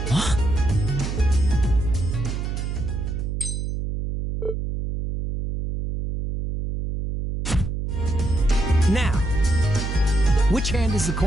What? Now, which hand is the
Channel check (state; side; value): noise; right; hum, 3 dB below the sound